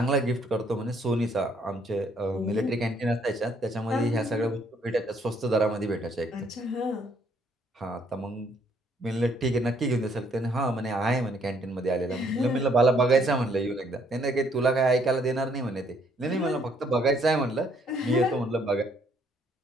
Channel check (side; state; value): both; normal; correlation 0.67